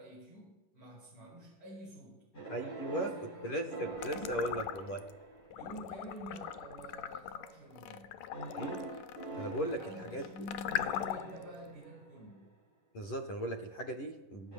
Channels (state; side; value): late; right; 11 ms